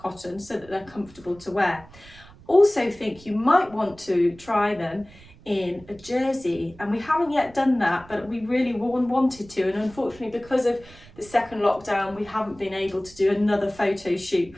so that they're comfortable to wear. Also think you might want to try them in a jersey, and we haven't yet done that, but we really wanted to, and unfortunately because of the second lockdown we haven't been able to do another photo shoot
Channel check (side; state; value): right; noise; rumble, 22 dB below the sound